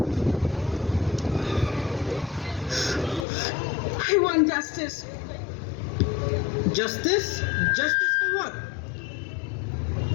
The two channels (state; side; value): drops out; right; at 3.2 s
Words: I want justice. Justice? Justice for what?